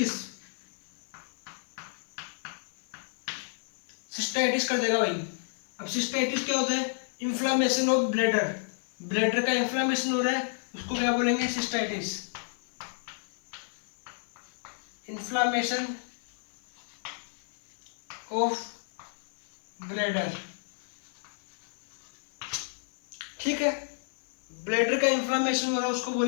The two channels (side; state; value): right; silent; 57 dB below the other